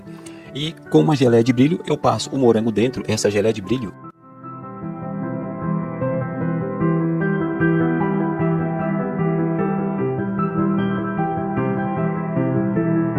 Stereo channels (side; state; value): both; identical; correlation 1.00